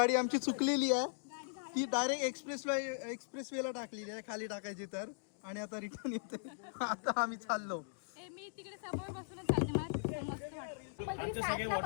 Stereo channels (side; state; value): right; silent; digital silence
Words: आमची चुकलेली आहे, ती डायरेक्ट एक्सप्रेस वेला टाकलेली आहे, खाली टाकायची तर. आणि आता रिटर्न येते. आता आम्ही चाललो. मी तिकडे समोर बसूनच चालते, मला मस्त वाटतं. आमचे सगळे